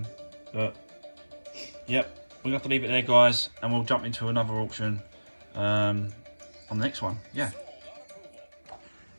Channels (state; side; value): inverted; both; correlation -1.00